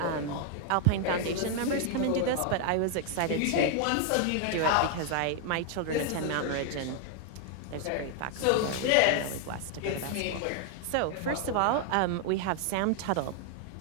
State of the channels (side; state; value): both; different; correlation 0.00